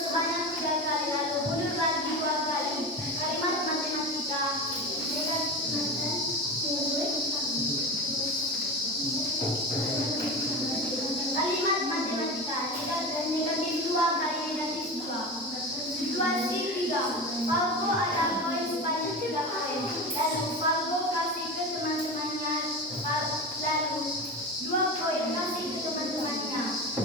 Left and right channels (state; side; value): normal; both; correlation 0.25